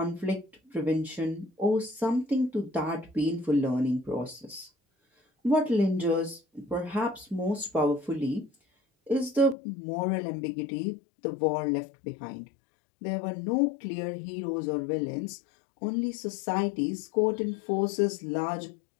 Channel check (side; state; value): right; drops out; at 9.6 s